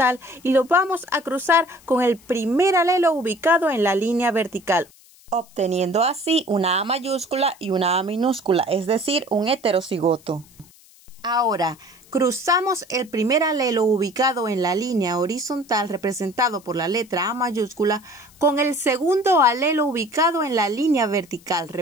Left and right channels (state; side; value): noise; left; hiss, 26 dB below the sound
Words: y lo vamos a cruzar con el primer alelo ubicado en la línea vertical, obteniendo así una A mayúscula y una A minúscula, es decir, un heterocigoto. Ahora, cruzamos el primer alelo ubicado en la línea horizontal, representado por la letra A mayúscula, con el segundo alelo ubicado en la línea vertical,